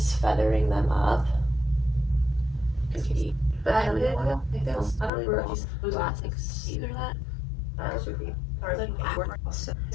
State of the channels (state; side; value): drops out; right; at 5.1 s